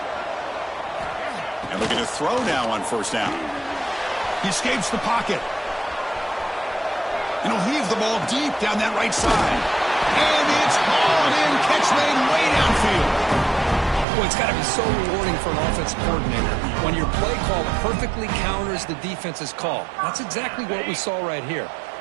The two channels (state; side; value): drops out; left; at 14.1 s